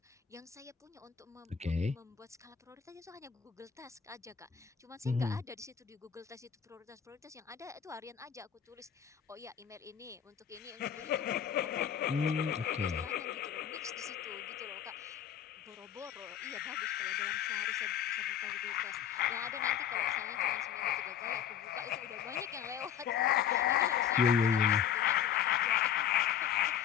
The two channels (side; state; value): right; quieter; 9.0 dB